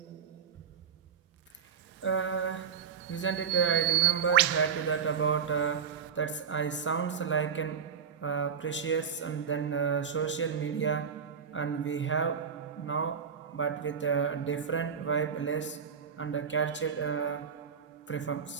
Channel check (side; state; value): left; quieter; 6.9 dB